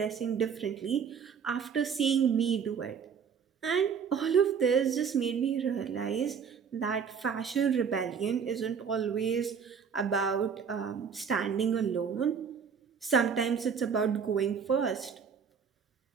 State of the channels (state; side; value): quieter; left; 6.7 dB